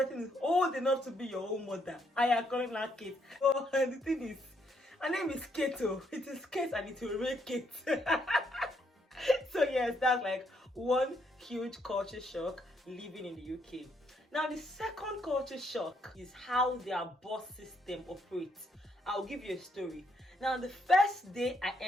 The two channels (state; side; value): normal; both; correlation 0.73